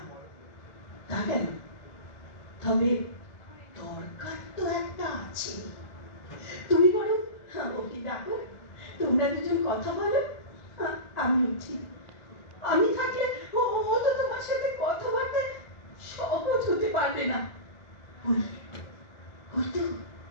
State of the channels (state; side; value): late; right; 1.4 ms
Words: তা কেন? তবে দরকার তো একটা আছে। তুমি বলো, ওকে ডাকো, তোমরা দুজন কথা বলো। আমি উঠি। আমি থাকলে ও তো তোমার সাথে কথাবার্তায় সহজ হতে পারবে না। ওই তো